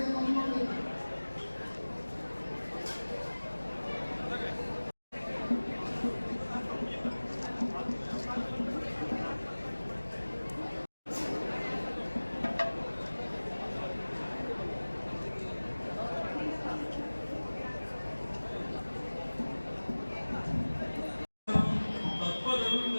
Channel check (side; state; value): both; inverted; correlation -1.00